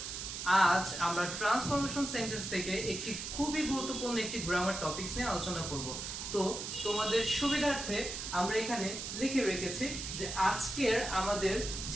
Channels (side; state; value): right; noise; hiss, 6 dB below the sound